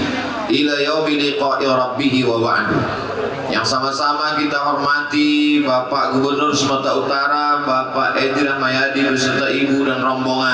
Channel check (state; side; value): identical; both; correlation 1.00